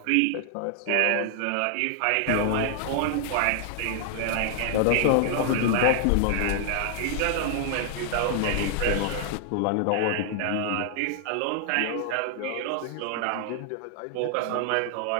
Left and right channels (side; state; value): both; different; correlation 0.00